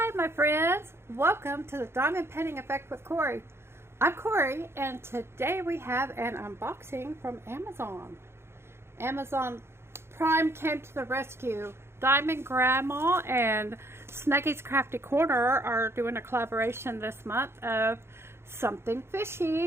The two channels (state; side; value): late; left; 0.12 ms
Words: my friends, welcome to the Diamond Painting Effect with Cori. I'm Cori and today we have an unboxing from Amazon. Amazon Prime came to the rescue. Diamond Grandma and Snuggy's Crafty Corner are doing a collaboration this month of something